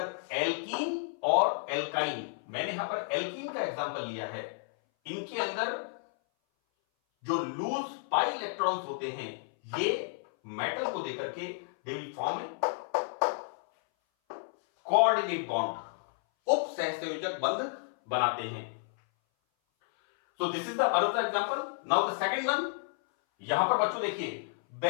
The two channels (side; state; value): right; silent; 57 dB below the other